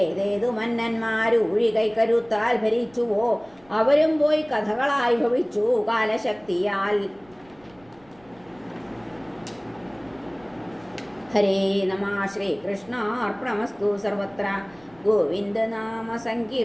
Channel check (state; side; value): noise; right; rumble, 29 dB below the sound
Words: മന്നന്മാരൂഴി കൈക്കരുത്താൽ ഭരിച്ചുവോ അവരും പോയി കഥകളായി ഭവിച്ചു കാലശക്തിയാൽ. ഹരേ നമ. ശ്രീകൃഷ്ണാർപ്പണമസ്തു. സർവത്ര ഗോവിന്ദ നാമ